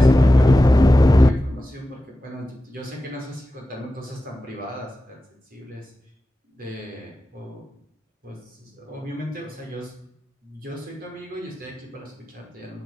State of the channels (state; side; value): normal; both; correlation 0.94